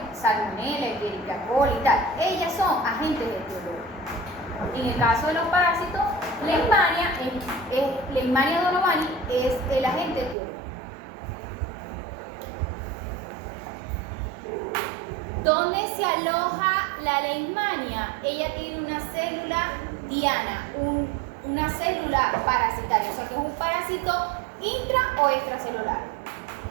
Salmonella, Escherichia coli y tal. Ellas son agentes etiológicos. En el caso de los parásitos, Leishmania donovani es el agente etiológico. ¿Dónde se aloja la leishmania? Ella tiene una célula diana, una célula parasitaria, o sea que es un parásito intra o extracelular.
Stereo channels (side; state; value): left; drops out; at 10.4 s